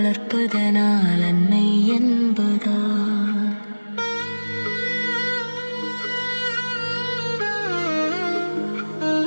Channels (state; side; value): inverted; both; correlation -1.00